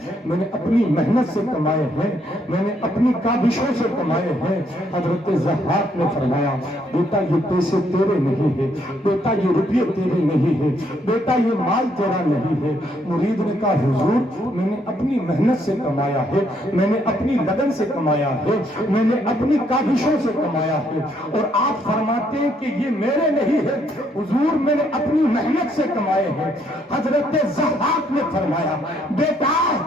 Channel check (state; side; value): normal; both; correlation 0.71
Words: میں نے اپنی محنت سے کمائے ہیں، میں نے اپنی کاوشوں سے کمائے ہیں۔ حضرت ضحاک نے فرمایا بیٹا یہ پیسے تیرے نہیں ہے، بیٹا یہ روپیے تیرے نہیں ہے، بیٹا یہ مال تیرا نہیں ہے۔ مرید نے کہا حضور میں نے اپنی محنت سے کمایا ہے، میں نے اپنی لگن سے کمایا ہے، میں نے اپنی کاوشوں سے کمایا ہے، اور آپ فرماتے ہیں کہ یہ میرے نہیں ہے۔ حضور میں نے اپنی محنت سے کمائے ہیں۔ حضرت ضحاک نے فرمایا بیٹا